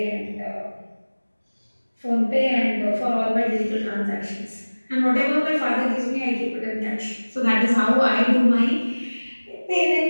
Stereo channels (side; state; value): both; inverted; correlation -1.00